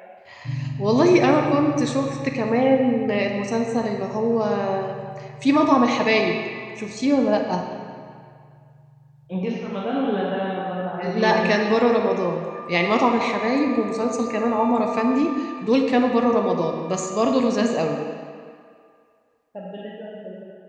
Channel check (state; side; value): identical; both; correlation 1.00